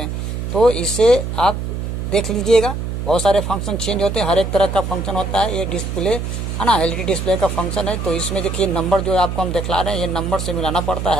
तो इसे आप देख लीजिएगा, बहुत सारे फंक्शन चेंज होते हैं, हर एक तरह का फंक्शन होता है। ये डिस्प्ले है ना, एलईडी डिस्प्ले का फंक्शन है। तो इसमें देखिए नंबर जो आपको हम दिखला रहे हैं ये नंबर से मिलाना पड़ता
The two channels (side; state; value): right; noise; hum, 4 dB below the sound